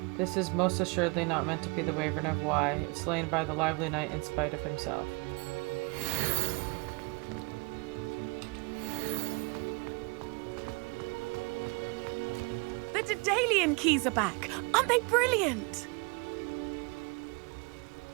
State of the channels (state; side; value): quieter; left; 29.8 dB